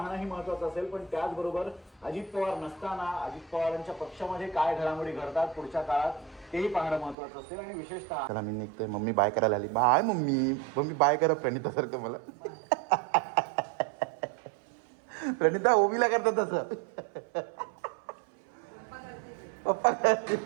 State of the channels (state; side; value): drops out; left; at 7.2 s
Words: महत्वाचं असेल, पण त्याचबरोबर अजित पवार नसताना अजित पवारांच्या पक्षामध्ये काय घडामोडी घडतात पुढच्या काळात तेही पाहणं महत्वाचं असेल. आणि विशेषतः चला मी निघतोय. मम्मी बाय करायला आली. बाय मम्मी बाय करा प्रणितासारखं मला. प्रणिता ओवीला करतात तसं.